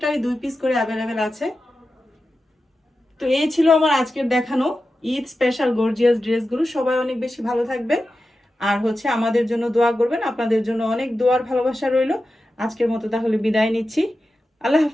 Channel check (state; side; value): normal; both; correlation 0.92